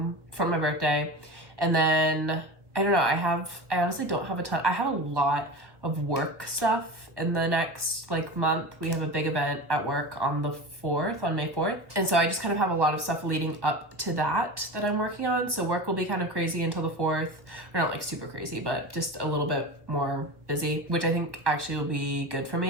for my birthday. And then, I don't know, I honestly don't have a ton. I have a lot of work stuff in the next month. We have a big event at work on the 4th, on May 4th. And so I just kind of have a lot of stuff leading up to that I'm working on. So work will be kind of crazy until the 4th. Or not super crazy, but just a little bit more busy, which I think actually will be good for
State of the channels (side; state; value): left; late; 1.0 ms